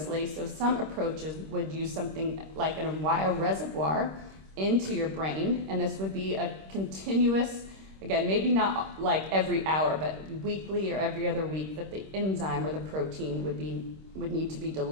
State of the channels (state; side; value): late; left; 26 ms